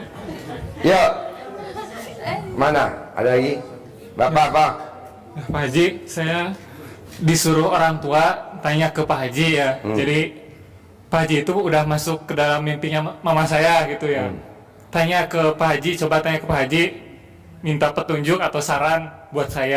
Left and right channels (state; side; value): identical; both; correlation 1.00